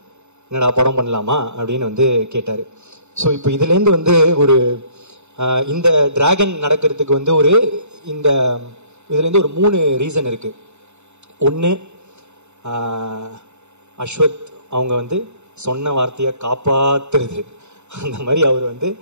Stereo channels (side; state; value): left; late; 0.82 ms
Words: என்னடா படம் பண்ணலாமா அப்படின்னு வந்து கேட்டார். ஸோ இப்போ இதுலேருந்து வந்து ஒரு இந்த டிராகன் நடக்கிறதுக்கு வந்து ஒரு இந்த இதுலேருந்து ஒரு 3 ரீசன் இருக்குது. ஒன்று, அஸ்வத் அவங்க வந்து சொன்ன வார்த்தையை காப்பாற்றுறது. அந்த மாதிரி அவர் வந்து